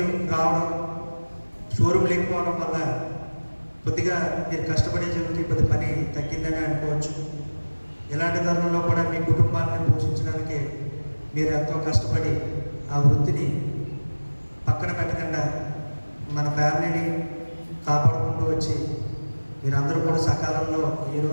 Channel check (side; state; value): both; inverted; correlation -1.00